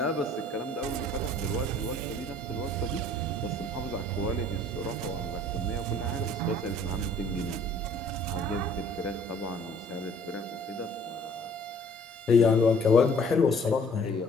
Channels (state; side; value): normal; both; correlation 0.55